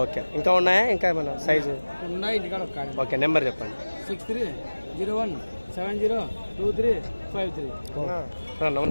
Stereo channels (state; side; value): inverted; both; correlation -1.00